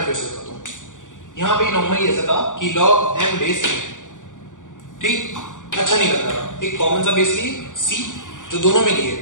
फिर से बताता हूं। यहां पे नॉर्मली ऐसा था कि log m बेस है, ठीक, अच्छा नहीं लग रहा, एक कॉमन सा बेस लिए सी जो दोनों में लिए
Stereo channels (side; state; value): right; late; 0.87 ms